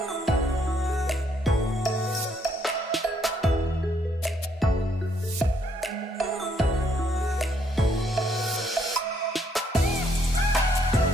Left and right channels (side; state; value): both; normal; correlation 0.70